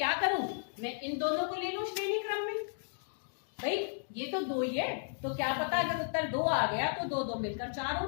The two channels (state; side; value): silent; right; digital silence